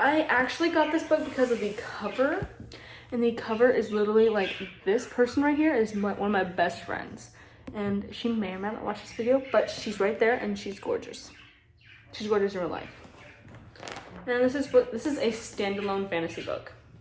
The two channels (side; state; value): both; identical; correlation 1.00